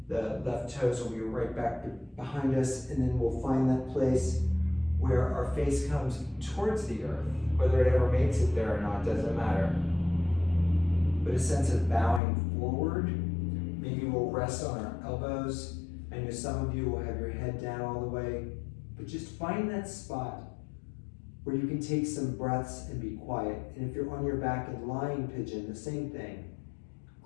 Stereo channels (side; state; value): right; drops out; at 12.2 s